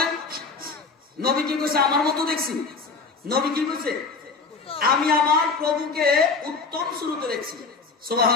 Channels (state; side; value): quieter; right; 4.5 dB